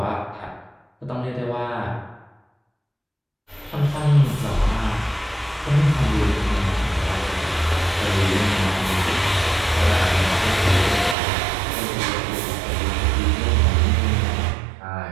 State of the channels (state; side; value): drops out; left; at 11.2 s